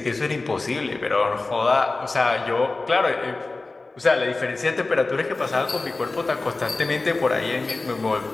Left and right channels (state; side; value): quieter; right; 3.4 dB